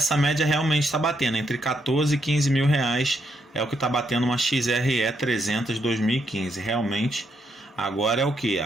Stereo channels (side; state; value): both; normal; correlation 0.77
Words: média realmente está batendo, entre 14 e 15 mil reais é o que está batendo uma XRE 300 2015. Realmente, agora é o que?